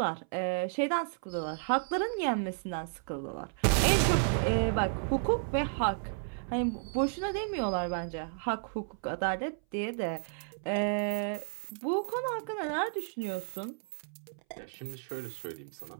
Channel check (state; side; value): silent; left; 56 dB below the other